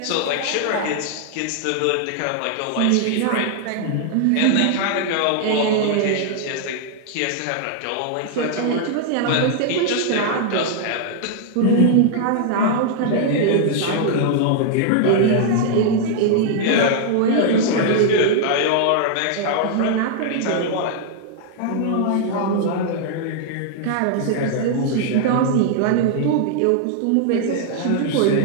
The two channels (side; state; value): both; different; correlation -0.01